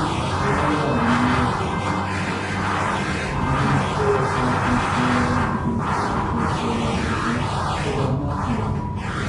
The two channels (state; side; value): identical; both; correlation 1.00